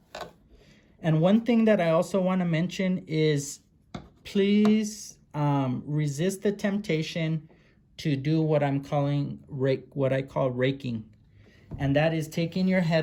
And one thing that I also want to mention is please resist the temptation to do what I'm calling what I call raking. And that is taking your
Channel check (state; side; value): identical; both; correlation 1.00